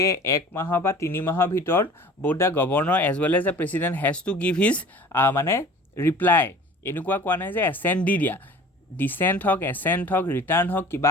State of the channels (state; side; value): normal; both; correlation 0.44